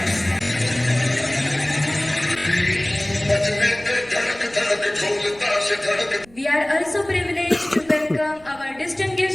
We are also privileged to welcome our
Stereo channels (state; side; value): noise; right; rumble, 26 dB below the sound